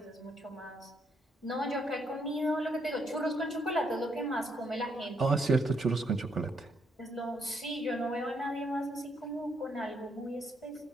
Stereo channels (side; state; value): both; normal; correlation 0.74